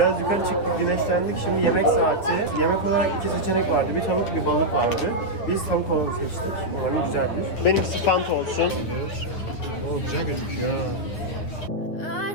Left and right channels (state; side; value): late; right; 9.8 ms